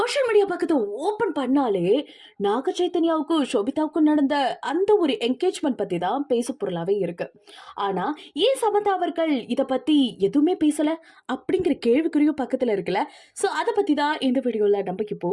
media பக்கத்தை open பண்ணாலே நாக சைத்தன்யாவுக்கும் ஷோபிதாவுக்கும் நடந்த அந்த ஒரு என்கேஜ்மெண்ட் பத்தி தான் பேசு பொருளாவே இருக்கு. ஆனா ஏன் சமந்தா அவர்கள் இத பத்தி எதுவுமே பேசல அப்படிங்கிற கேள்விக்குறியும் பக்கத்துல இருக்குல்ல. சோ அதை பத்தி தான் இந்த வீடியோல நம்ம இப்போ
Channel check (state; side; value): identical; both; correlation 1.00